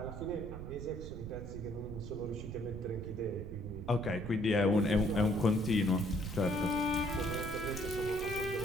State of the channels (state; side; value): noise; right; rumble, 9 dB below the sound